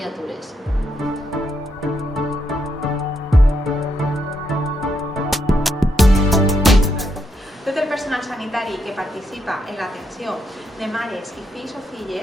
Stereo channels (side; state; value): both; normal; correlation 0.79